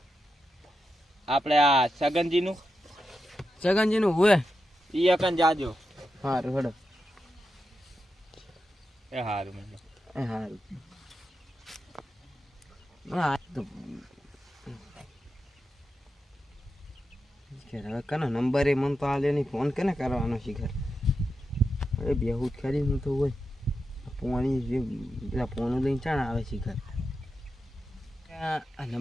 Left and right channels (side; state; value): both; normal; correlation 0.88